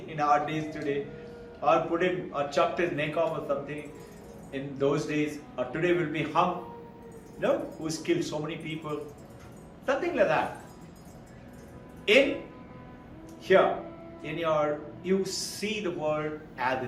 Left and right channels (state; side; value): identical; both; correlation 1.00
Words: our days today. Or put him, or chopped his neck off or something in those days. Or today will be hung. No? Who's killed so many people. Something like that. In here, you see the world as